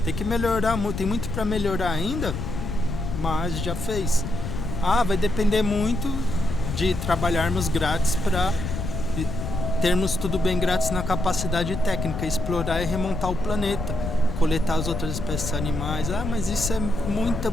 Tem que melhorar, tem muito para melhorar ainda, mas já fez. Vai depender muito de trabalharmos grátis para termos tudo bem grátis na capacidade técnica, explorar e remontar o planeta, coletar as outras espécies animais. Mas isso é muita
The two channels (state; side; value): noise; left; rumble, 5 dB below the sound